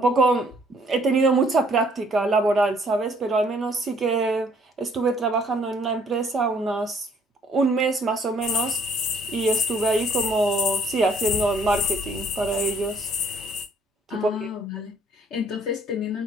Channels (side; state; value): both; normal; correlation 0.62